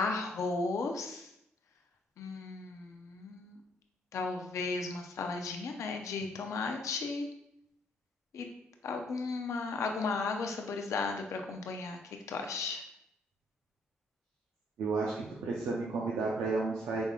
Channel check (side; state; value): both; normal; correlation 0.66